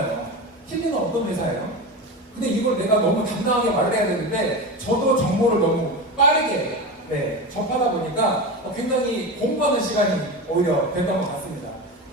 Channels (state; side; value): normal; both; correlation 0.24